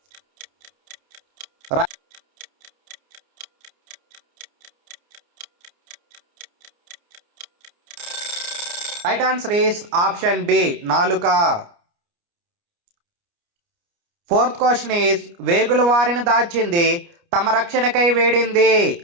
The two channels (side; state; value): left; late; 29 ms